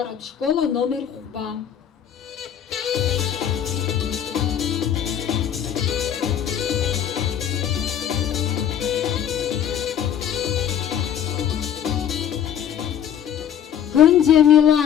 школ аномер хәба.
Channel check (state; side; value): quieter; right; 9.4 dB